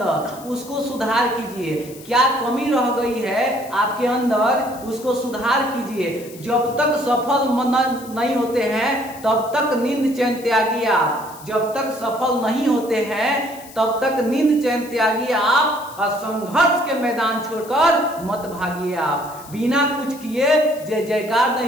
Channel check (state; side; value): noise; left; hiss, 19 dB below the sound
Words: उसको सुधार कीजिए, क्या कमी रह गई है आपके अंदर उसको सुधार कीजिए। जब तक सफल नहीं होते हैं तब तक नींद चैन त्यागिए आप, जब तक सफल नहीं होते हैं तब तक नींद चैन त्यागिए आप, और संघर्ष के मैदान छोड़कर मत भागिए आप। बिना कुछ किए जय जयकार